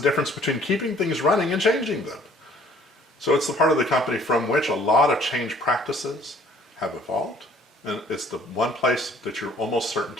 between keeping things running and changing them. So it's the part of the company from which a lot of change practices have evolved. And it's the one place that you're almost certain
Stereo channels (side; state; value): both; normal; correlation 0.57